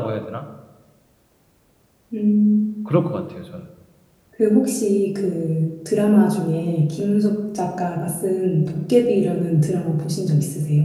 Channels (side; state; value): both; identical; correlation 1.00